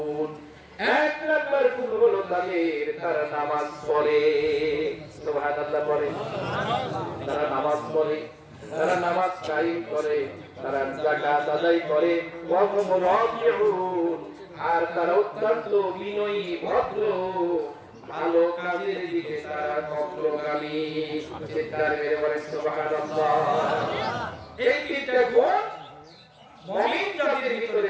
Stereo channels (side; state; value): both; identical; correlation 1.00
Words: এক নাম্বার গুণ হলো তারা নামাজ পড়ে। সুবহানাল্লাহ পড়ে, তারা নামাজ পড়ে, তারা নামাজ কায়েম করে, তারা যাকাত আদায় করে, ওয়া হুম রাকিউন। আর তারা অত্যন্ত বিনয়ী, ভদ্র, ভালো কাজের দিকে তারা অগ্রগামী। চিৎকার মেরে বলেন সুবহানাল্লাহ। এই তিনটা গুণ মুমিন যাদের ভিতরে